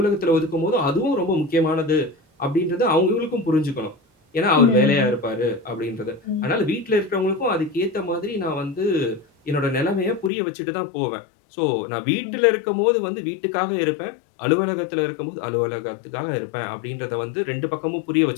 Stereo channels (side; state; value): right; drops out; at 10.3 s